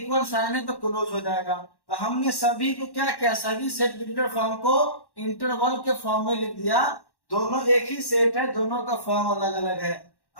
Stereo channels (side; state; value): right; late; 1.1 ms